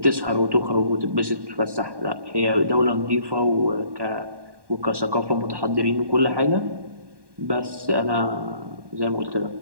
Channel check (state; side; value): late; left; 1.1 ms